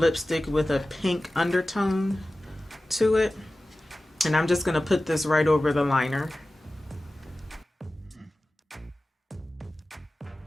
with a pink undertone to it, and I'm just gonna put this right over the liner.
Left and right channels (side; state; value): both; normal; correlation 0.96